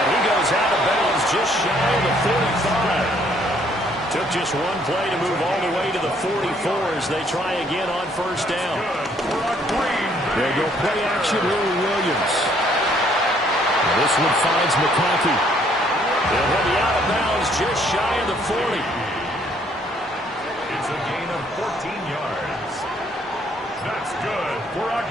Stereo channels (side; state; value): both; normal; correlation 0.65